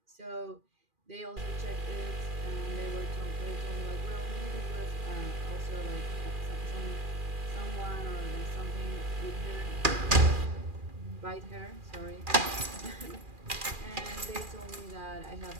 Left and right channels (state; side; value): late; left; 2.4 ms